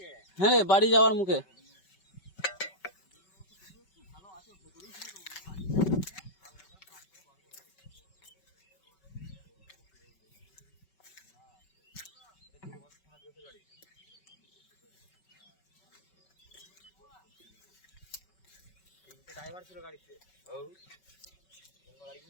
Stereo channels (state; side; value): late; right; 5.3 ms